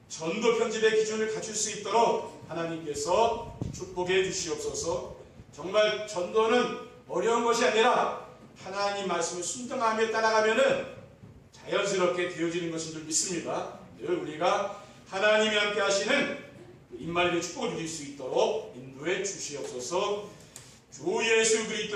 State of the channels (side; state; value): both; identical; correlation 1.00